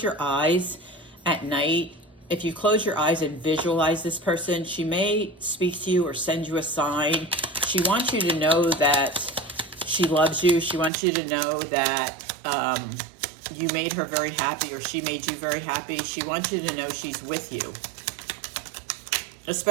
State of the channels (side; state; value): left; drops out; at 10.9 s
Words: your eyes at night, if you close your eyes and visualize this person, she may speak to you or send you a sign. She wants you to know that she loves you. She wants you to know that you made her very happy, or she made you very happy. She wants you to know she's with you,